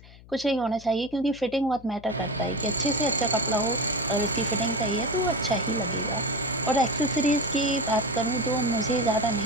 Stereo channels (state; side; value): noise; left; hum, 21 dB below the sound